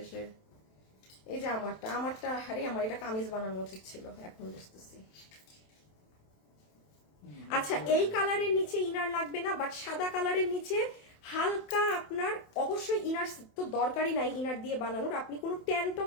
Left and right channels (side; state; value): right; late; 27 ms